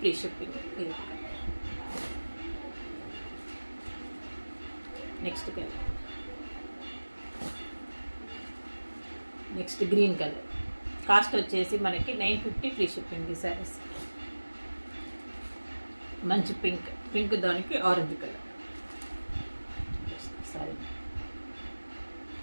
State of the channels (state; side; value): inverted; both; correlation -1.00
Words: ఫ్రీ షిప్పింగ్. ఇది next colour, next green colour. Cost వచ్చేసి మనకి 950 ఫ్రీ షిప్పింగ్. ఈ శారీస్ మంచి పింక్ దానికి ఆరెంజ్ కలర్. సారీ,